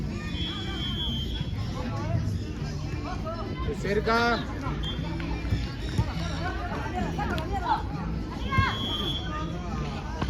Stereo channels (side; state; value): both; identical; correlation 1.00